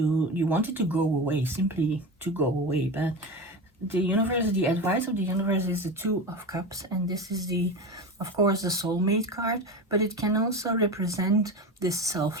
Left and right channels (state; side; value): normal; both; correlation 0.24